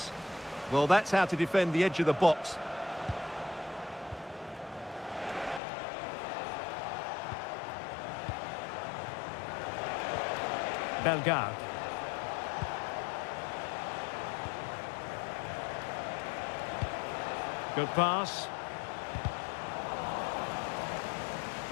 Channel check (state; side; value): drops out; right; at 5.6 s